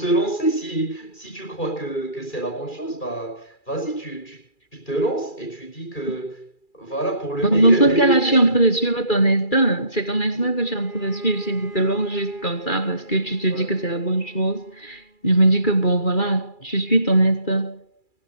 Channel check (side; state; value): right; late; 2.3 ms